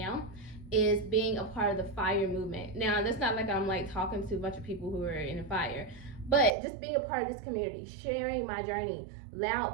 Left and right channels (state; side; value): drops out; left; at 6.5 s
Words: is being a part of the FIRE movement. Now, that's not like I'm like talking to a bunch of people who are in the FIRE, but just being a part of this community, sharing my journey,